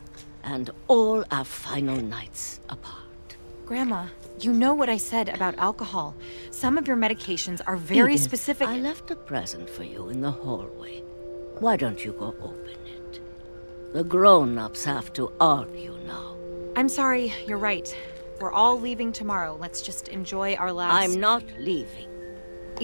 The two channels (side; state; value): both; inverted; correlation -1.00